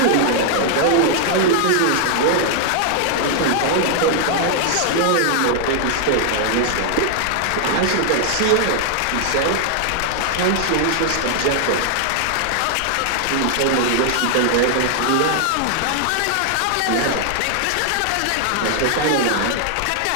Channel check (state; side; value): different; both; correlation 0.00